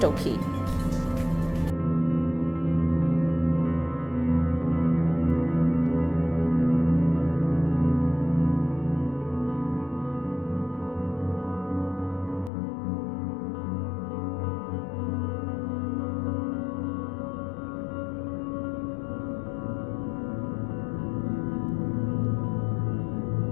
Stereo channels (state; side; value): drops out; right; at 12.5 s